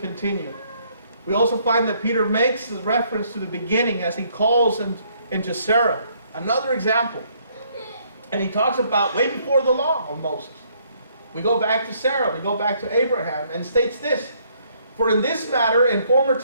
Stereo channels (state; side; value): inverted; both; correlation -0.67